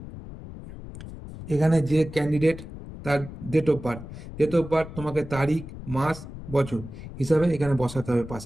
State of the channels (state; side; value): noise; left; rumble, 12 dB below the sound